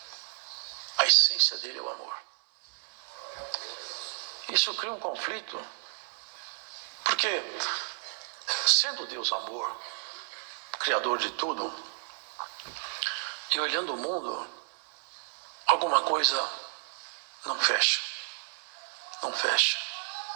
a essência dele é o amor. Isso cria um conflito, porque sendo Deus amor, criador de tudo, e olhando o mundo, alguma coisa não fecha. Não fecha.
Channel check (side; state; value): left; silent; 57 dB below the other